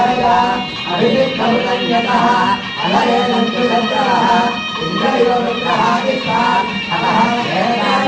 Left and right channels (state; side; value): identical; both; correlation 1.00